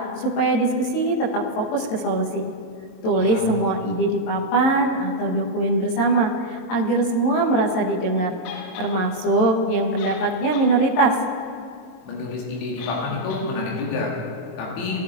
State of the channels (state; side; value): late; right; 22 ms